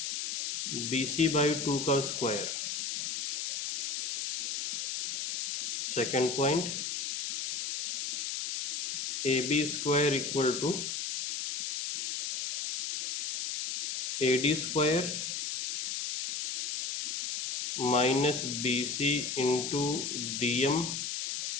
BC by 2 का square. Second point AB square equal to AD square minus BC into DM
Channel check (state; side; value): noise; left; hiss, 3 dB below the sound